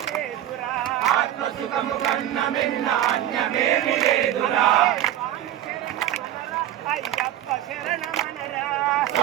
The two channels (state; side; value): quieter; left; 12.2 dB